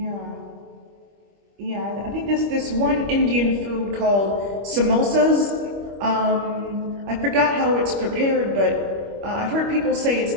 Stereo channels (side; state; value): left; late; 25 ms